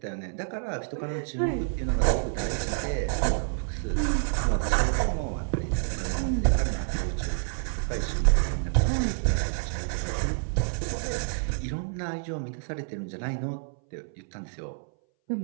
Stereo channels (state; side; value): silent; left; 59 dB below the other